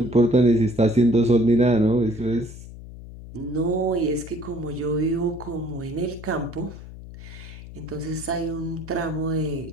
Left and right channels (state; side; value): noise; left; hum, 14 dB below the sound